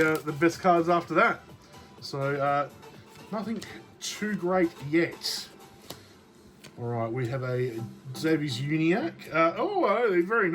best cards after that. So nothing too great yet. All right, we have a Davies Uniac. Oh, very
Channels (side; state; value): both; identical; correlation 1.00